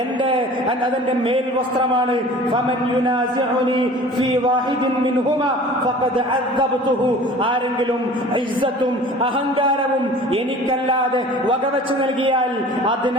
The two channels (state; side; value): normal; both; correlation 0.44